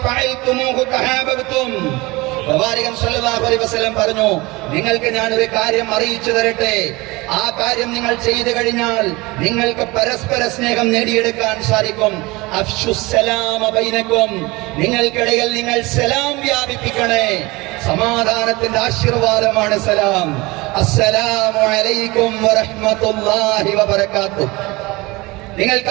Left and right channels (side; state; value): left; quieter; 22.8 dB